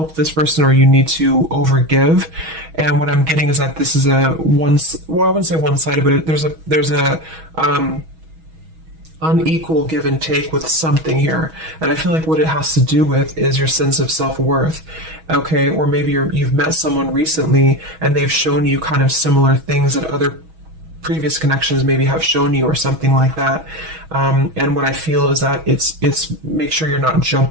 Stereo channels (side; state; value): left; late; 6.2 ms